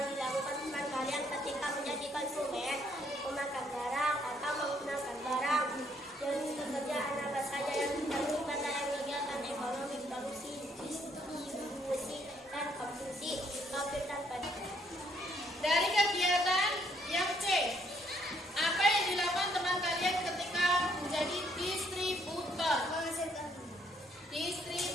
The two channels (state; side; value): normal; both; correlation 0.69